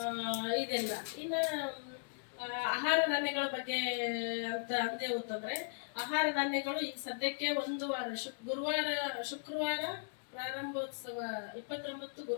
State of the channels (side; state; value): right; silent; digital silence